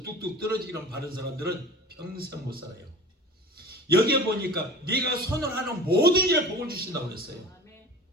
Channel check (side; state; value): both; normal; correlation 0.39